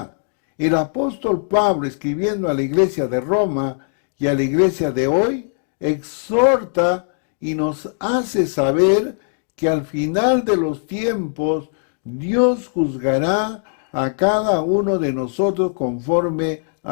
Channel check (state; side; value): silent; right; digital silence